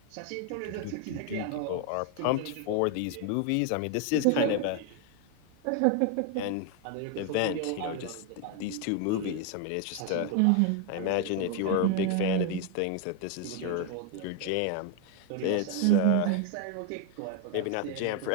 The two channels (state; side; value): different; both; correlation 0.01